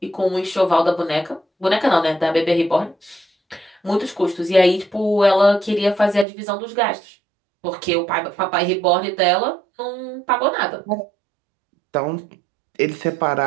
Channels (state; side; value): drops out; left; at 6.2 s